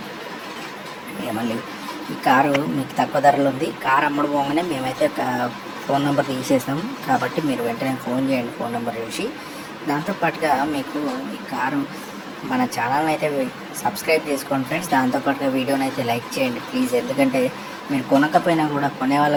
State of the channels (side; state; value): both; identical; correlation 1.00